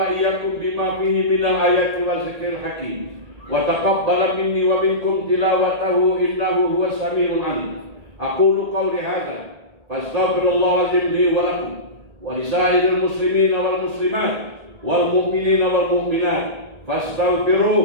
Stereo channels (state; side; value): late; left; 1.8 ms